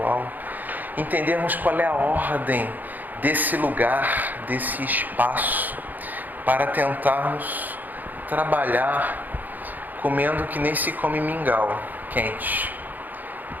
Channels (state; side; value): late; left; 0.084 ms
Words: Entendermos qual é a ordem desse lugar, desse espaço, para tentarmos trabalhar comendo que nem se come mingau quente,